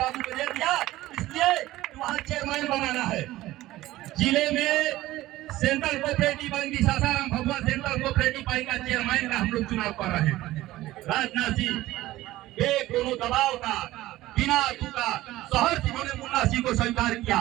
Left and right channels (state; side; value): quieter; left; 16.5 dB